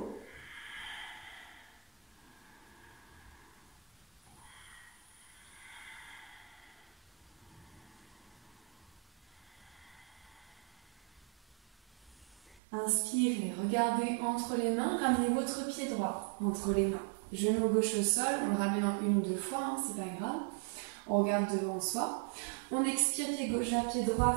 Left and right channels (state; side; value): drops out; left; at 12.6 s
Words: Inspirez, regardez entre les mains, ramenez votre pied droit entre les mains. Genou gauche au sol, on le ramène en 1 ou 2 fois, hein, c'est pas grave. On regarde devant soi. On expire, pied gauche vers pied droit,